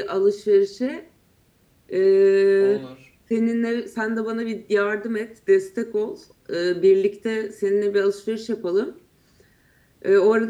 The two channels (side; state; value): both; identical; correlation 1.00